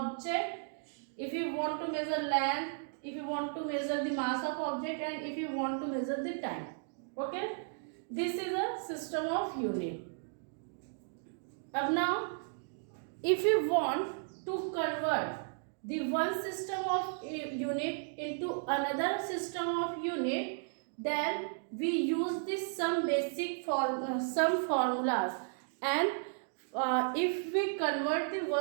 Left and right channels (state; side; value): silent; left; digital silence